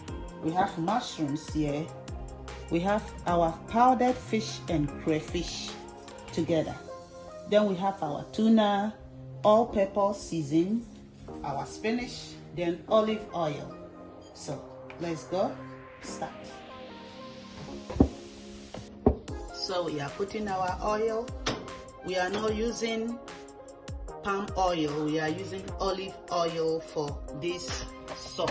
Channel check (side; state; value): both; identical; correlation 1.00